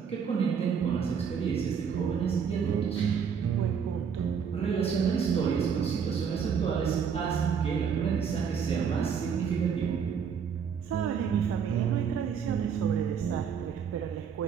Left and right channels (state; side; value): quieter; left; 7.0 dB